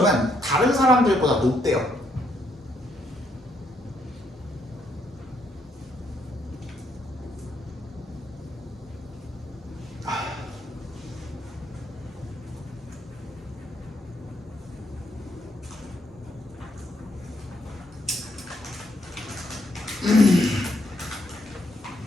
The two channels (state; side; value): normal; both; correlation 0.74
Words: 다른 사람들보다 높대요.